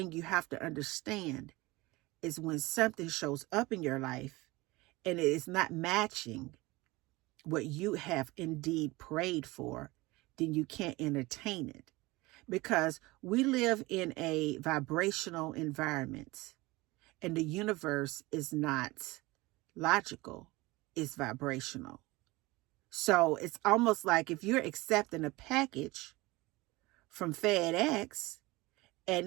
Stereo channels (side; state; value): left; quieter; 21.5 dB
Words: you have to understand is when something shows up in your life and it is not matching what you have indeed prayed for, then you can't entertain it. Because we live in a vibrational environment, and the universe is not logical, it's vibrational. So it's almost like if you're accepting a package from FedEx and